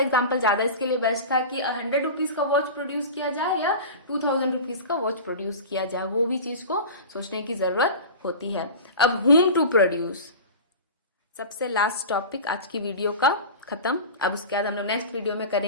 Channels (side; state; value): both; inverted; correlation -0.32